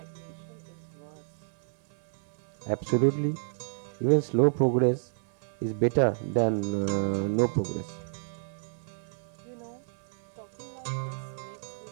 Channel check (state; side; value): silent; left; 58 dB below the other